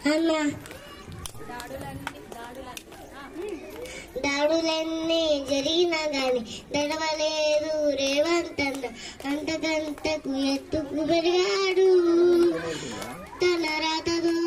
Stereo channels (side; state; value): both; identical; correlation 1.00